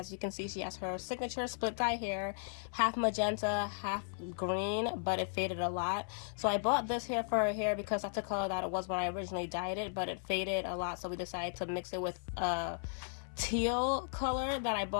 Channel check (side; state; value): right; silent; 54 dB below the other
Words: you can see, she has her signature split dye hair, half magenta, half green, but it faded a lot. So I bought this hair for her hair because that's the color that it was when I originally dyed it, but it faded a lot, so we decided to mix it with teal color that I